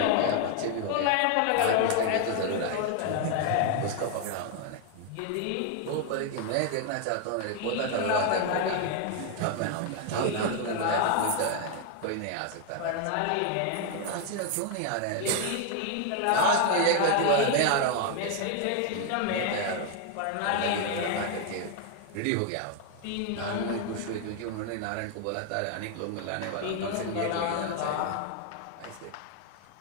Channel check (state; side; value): different; both; correlation 0.01